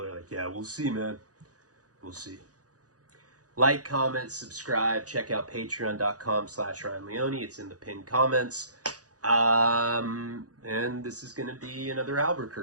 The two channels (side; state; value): left; late; 0.67 ms